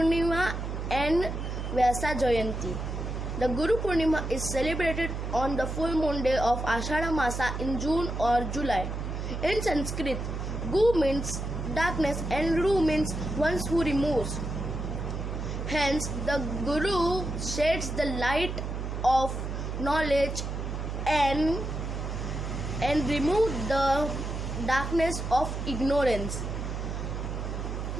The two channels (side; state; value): right; noise; hum, 4 dB below the sound